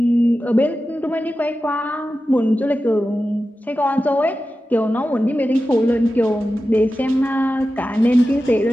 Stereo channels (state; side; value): normal; both; correlation 0.93